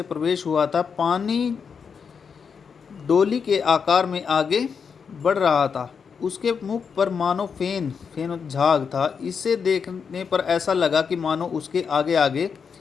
प्रवेश हुआ था। पानी डोली के आकार में आगे बढ़ रहा था। उसके मुख पर मानो फेन झाग था। इसे देखने पर ऐसा लगा कि मानो उसके आगे आगे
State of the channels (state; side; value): quieter; right; 6.2 dB